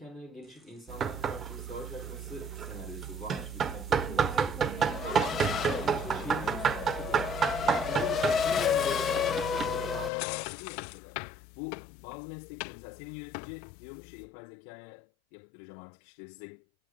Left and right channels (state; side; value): drops out; right; at 10.1 s